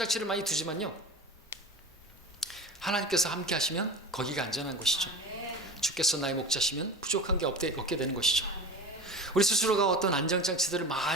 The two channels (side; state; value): both; normal; correlation 0.32